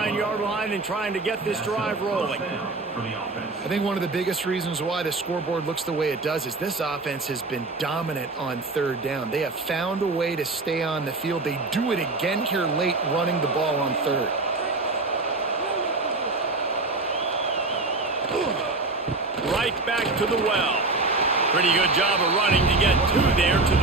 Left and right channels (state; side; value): quieter; left; 3.4 dB